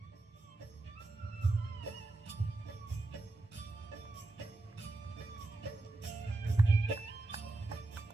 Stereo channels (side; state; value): left; quieter; 3.0 dB